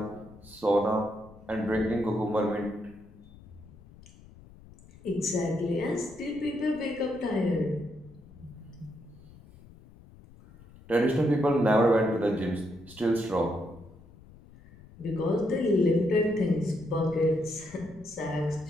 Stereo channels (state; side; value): noise; left; rumble, 22 dB below the sound